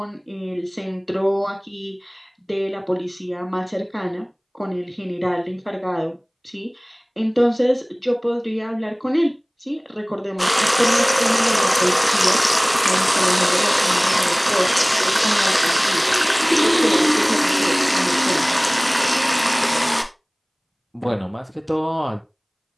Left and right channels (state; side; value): identical; both; correlation 1.00